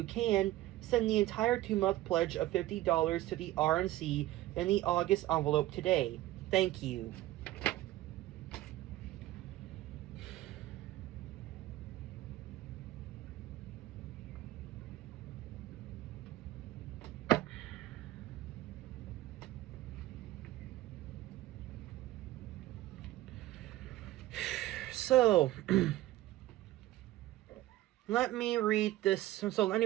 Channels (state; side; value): quieter; left; 15.7 dB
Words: can, send the entire 2-month pledge of $50 to the RNC in the August envelope today. Thank you. So, let me read this. So